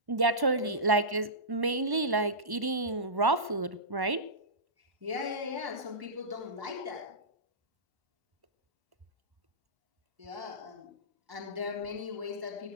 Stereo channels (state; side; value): late; left; 1.1 ms